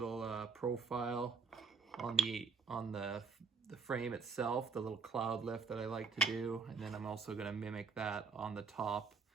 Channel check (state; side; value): quieter; left; 4.9 dB